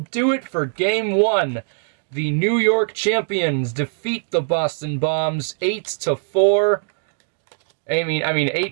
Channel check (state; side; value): silent; left; digital silence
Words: it for game 1. The New York champions defeat the Boston Bombs 8-4. I mean